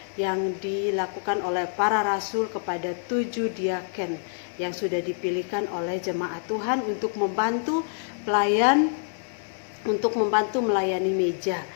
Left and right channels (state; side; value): silent; right; 61 dB below the other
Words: yang dilakukan oleh para rasul kepada 7 diaken yang sudah dipilihkan oleh jemaat Tuhan untuk membantu pelayan, untuk membantu melayani meja,